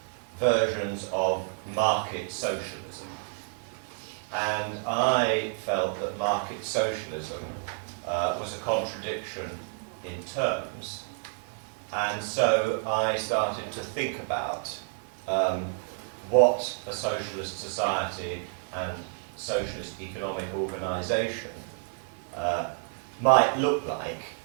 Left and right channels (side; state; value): left; silent; 57 dB below the other